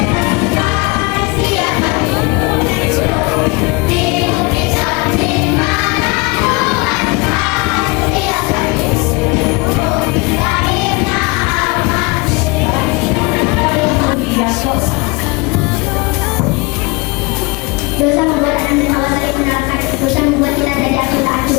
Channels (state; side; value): quieter; right; 27.0 dB